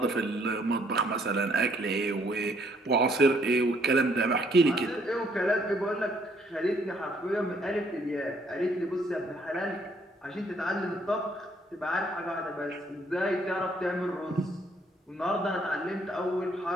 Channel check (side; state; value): both; normal; correlation 0.66